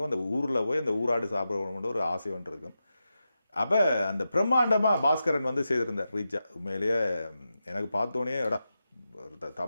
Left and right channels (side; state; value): both; inverted; correlation -0.90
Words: அந்த ஊரில் போய் அந்த ஊராடு சாப்பிடணும்னு ஒரு ஆசை ஒன்று இருக்கும். அப்போ அந்த பிரம்மாண்டமாக பாஸ்கரன் வந்து செய்திருந்தார் ரீச்சா. உண்மையிலேயே எனக்கு பார்த்தோன்னே எடா